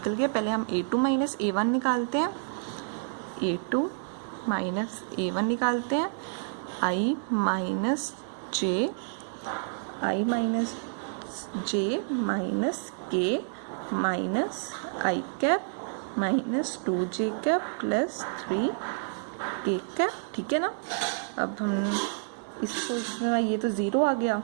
गया। पहले हम A2 माइनस A1 निकालते हैं, A2 माइनस A1 निकालते हैं, I minus J minus K minus I cap minus 2j cap plus 3k cap. ठीक है ना, अब हम इसको ये तो 0 आ गया,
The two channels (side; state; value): left; silent; digital silence